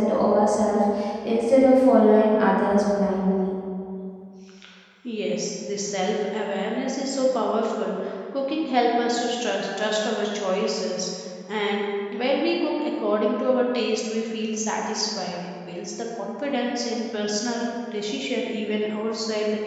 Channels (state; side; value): identical; both; correlation 1.00